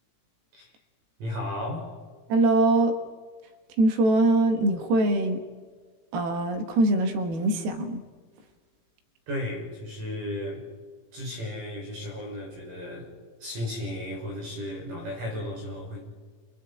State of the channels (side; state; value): left; late; 18 ms